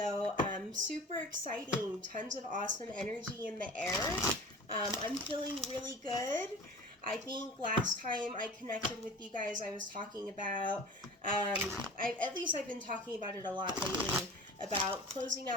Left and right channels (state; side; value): normal; both; correlation 0.40